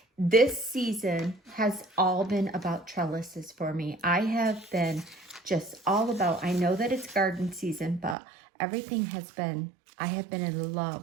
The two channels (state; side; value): drops out; left; at 8.2 s